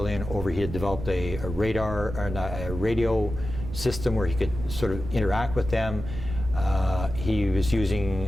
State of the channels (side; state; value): right; noise; rumble, 8 dB below the sound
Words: over. He had developed a radar, or a radio system where he could sort of interact with them. He was